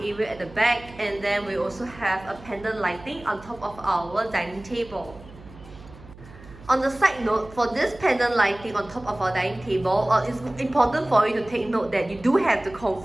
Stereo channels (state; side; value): noise; right; hum, 19 dB below the sound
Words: at the back. And then we also have a pendant lighting on top of our dining table. On the side note, for this pendant lighting on top of our dining table, it's important for you to take note that you do have to